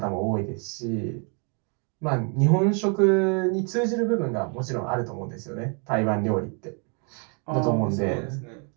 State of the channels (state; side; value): quieter; left; 36.9 dB